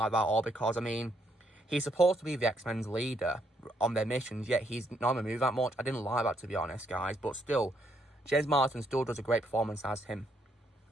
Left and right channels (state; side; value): normal; both; correlation 0.73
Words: that at all because, I mean, he's supposed to be the X-Men's leader on their missions, yet he's not going to move that much. I didn't like that, to be honest, guys, but still, James Marsden still does a great performance as him.